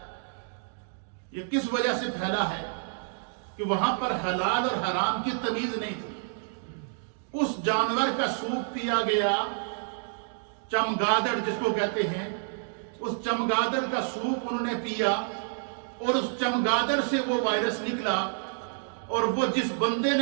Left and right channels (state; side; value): silent; left; digital silence